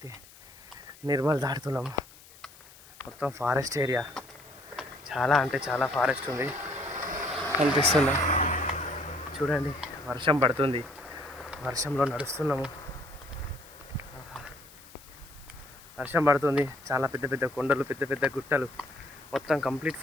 నిర్మల్ దాటుతున్నాము. మొత్తం ఫారెస్ట్ ఏరియా, చాలా అంటే చాలా ఫారెస్ట్ ఉంది కనిపిస్తుందా చూడండి. వర్షం పడుతుంది, వర్షంలో నడుస్తున్నాము. వర్షం పడుతుంది, చాలా పెద్ద పెద్ద కొండలు, పెద్ద పెద్ద గుట్టలు, మొత్తం కంప్లీట్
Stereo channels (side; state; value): left; noise; hiss, 22 dB below the sound